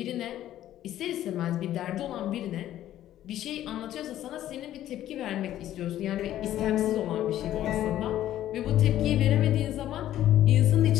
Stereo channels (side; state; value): right; quieter; 12.7 dB